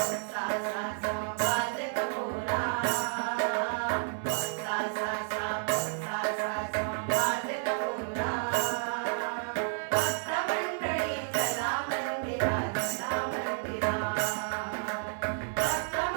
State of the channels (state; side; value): silent; left; 57 dB below the other